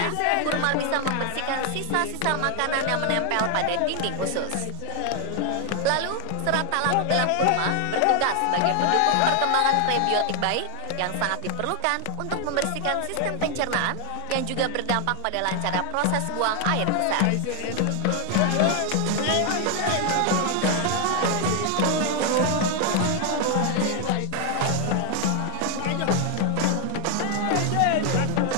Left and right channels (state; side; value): different; both; correlation 0.00